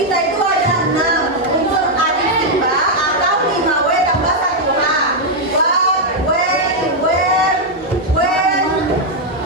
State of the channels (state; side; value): normal; both; correlation -0.01